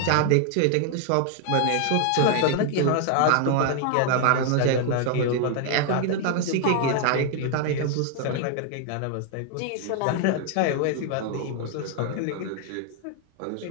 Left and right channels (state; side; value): different; both; correlation 0.00